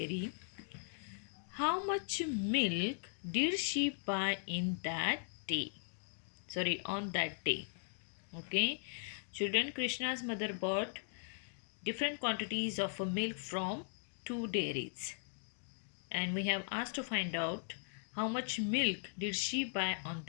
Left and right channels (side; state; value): right; silent; digital silence